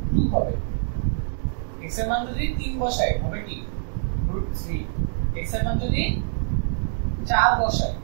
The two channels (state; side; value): silent; left; digital silence